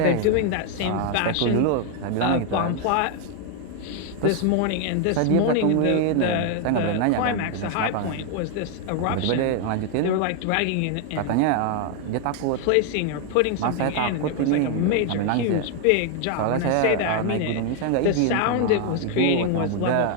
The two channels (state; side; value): different; both; correlation 0.01